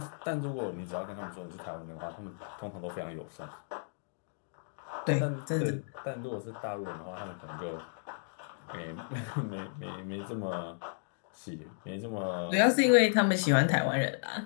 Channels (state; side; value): silent; right; digital silence